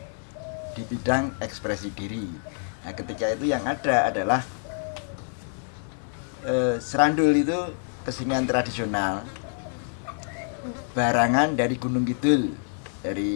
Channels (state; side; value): silent; right; 60 dB below the other